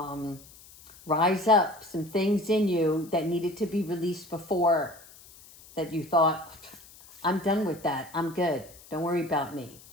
rise up some things in you that needed to be released before, that you thought, I'm done with that. I'm good. Don't worry about me,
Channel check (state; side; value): noise; left; hiss, 22 dB below the sound